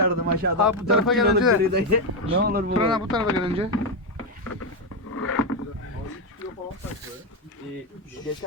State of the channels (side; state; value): both; normal; correlation 0.06